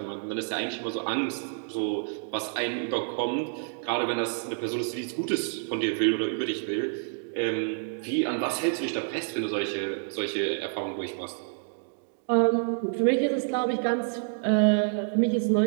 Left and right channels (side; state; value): left; silent; digital silence